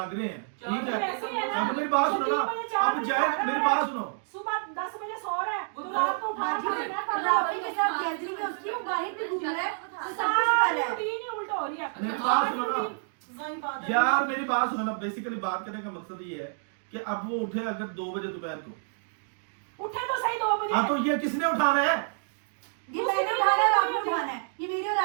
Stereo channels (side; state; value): left; silent; digital silence